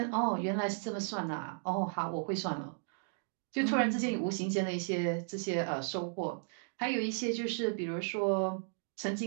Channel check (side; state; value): left; silent; digital silence